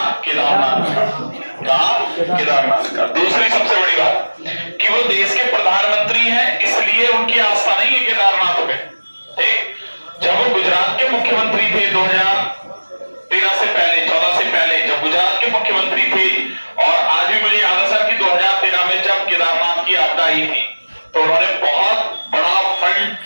केदारनाथ का। कहां? केदारनाथ का। दूसरी सबसे बड़ी बात कि वो देश के प्रधानमंत्री हैं, इसलिए उनकी आस्था नहीं है केदारनाथ में। ठीक, जब वो गुजरात के मुख्यमंत्री थे 2013 से पहले, 14 से पहले, जब गुजरात के मुख्यमंत्री थे, और आज भी मुझे याद है सर कि 2013 में जब केदारनाथ की आपदा आई थी, तो उन्होंने बहुत बड़ा फंड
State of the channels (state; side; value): inverted; both; correlation -1.00